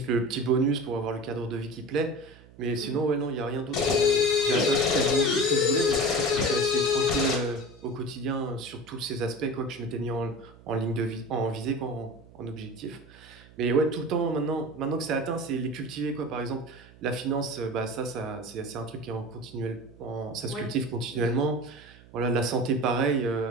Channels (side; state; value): right; noise; hum, 23 dB below the sound